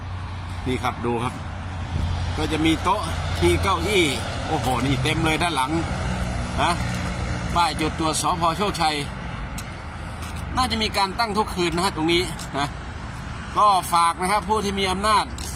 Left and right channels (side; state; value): both; identical; correlation 1.00